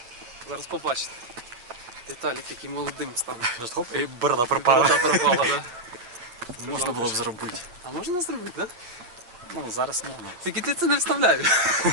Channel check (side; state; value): left; late; 8.5 ms